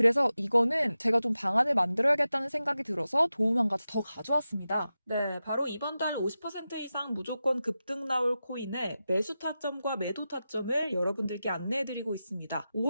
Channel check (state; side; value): inverted; both; correlation -0.92